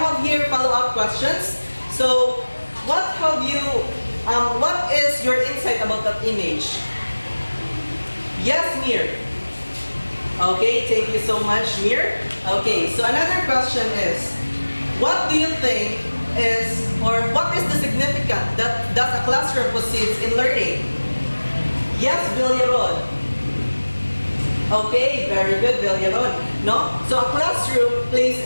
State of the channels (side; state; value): both; inverted; correlation -1.00